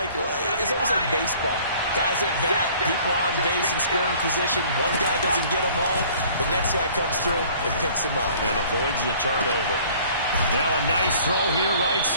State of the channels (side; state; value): both; inverted; correlation -0.52